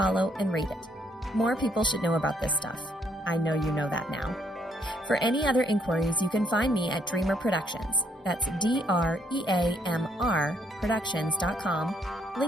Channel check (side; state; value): both; normal; correlation 0.69